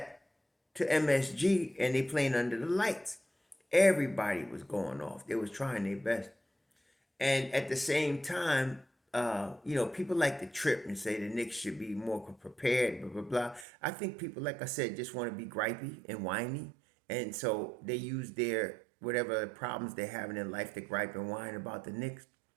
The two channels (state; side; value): drops out; left; at 13.7 s